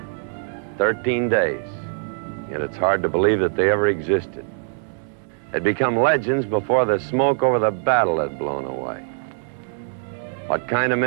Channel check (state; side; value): silent; left; 64 dB below the other